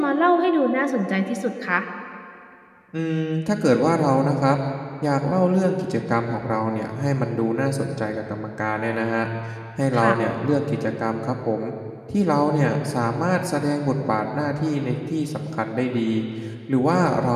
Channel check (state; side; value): identical; both; correlation 1.00